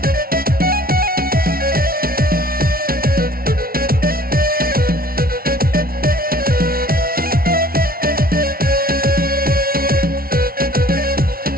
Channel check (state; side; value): late; left; 0.43 ms